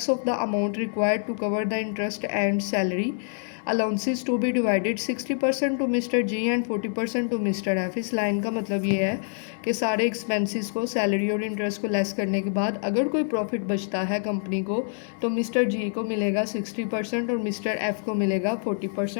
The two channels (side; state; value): right; silent; 61 dB below the other